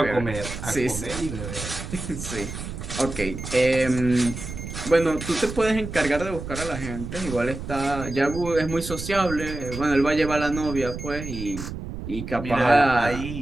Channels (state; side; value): noise; right; rumble, 8 dB below the sound